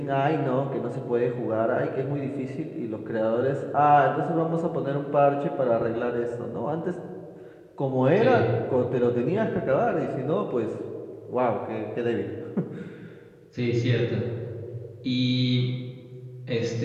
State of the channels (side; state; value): both; identical; correlation 1.00